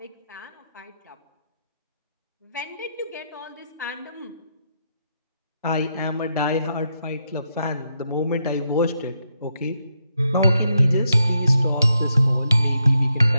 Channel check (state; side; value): inverted; both; correlation -0.81